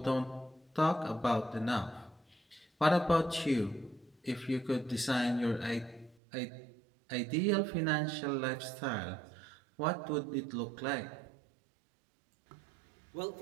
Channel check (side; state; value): left; drops out; at 6.2 s